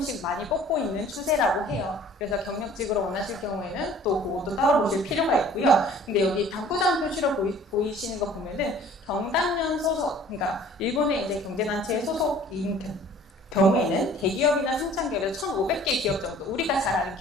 많이 뽑고 있는 추세라고 해요. 그래서 경력직으로 원하실 경우에는 또 그것도 따로 보실 필요가 있고요. 근데 여기 당구장 표시로 보이시는 거 보면은 경단련 소속, 그러니까 일본의 이제 경제단체에 소속인 경우에는 대기업이나 상장기업에서 1,500개 기업 정도, 우리가 잘 아는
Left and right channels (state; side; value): normal; both; correlation 0.51